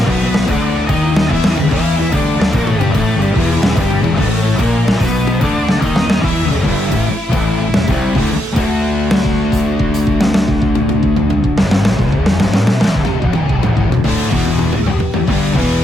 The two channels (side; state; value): both; normal; correlation 0.81